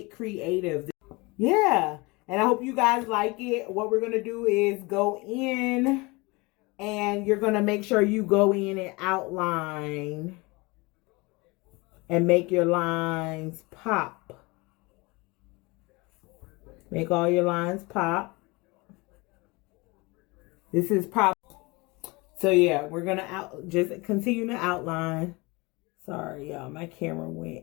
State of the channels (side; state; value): right; quieter; 25.2 dB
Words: creative. Yeah, and I hope you guys like it. What we're going to do is go in, and you're going to make sure you go in and outline and make your lines pop. Make all your lines pop. This is pop. So yeah, we're gonna just continue to outline. Sorry, y'all, my camera